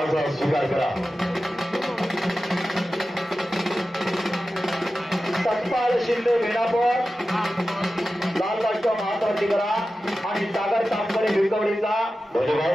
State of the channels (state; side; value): normal; both; correlation 0.94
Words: स्वीकार करा. सत्पाल शिंदे वेणापूर लाल राष्ट्र महात्मावरती करा आणि सागर तांबरे भिकवडीचा